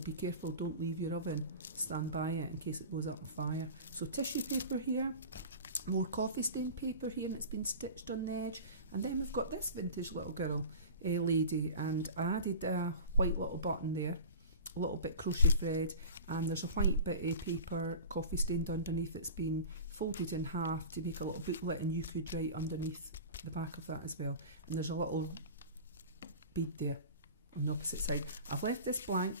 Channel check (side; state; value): both; inverted; correlation -0.35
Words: careful, don't leave your oven, stand by it in case it goes up on fire. So tissue paper here, more coffee stain paper here, and it's been stitched on the edge. And then we've got this vintage little girl, lady, and I added a white little button there, a little bit crochet thread, and there's a white bit of paper coffee stained underneath. It's been folded in half to make a little booklet, and you could write underneath the back of that as well. And there's a little bead there on the opposite side. I've left this